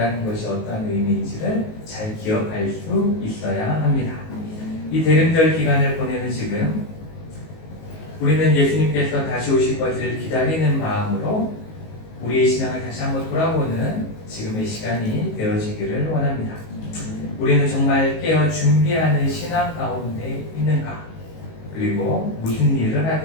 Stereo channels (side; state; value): right; late; 19 ms